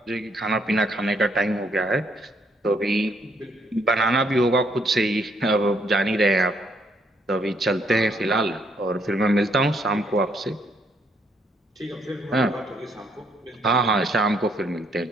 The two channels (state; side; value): normal; both; correlation 0.71